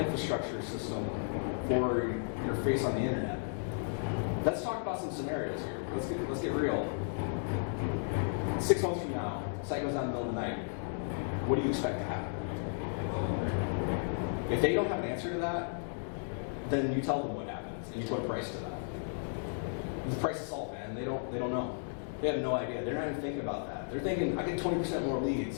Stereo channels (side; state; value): right; silent; digital silence